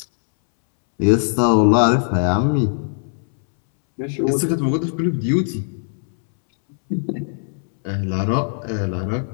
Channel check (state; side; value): silent; right; 66 dB below the other